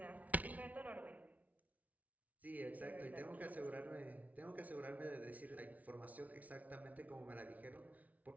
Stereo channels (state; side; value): late; left; 0.072 ms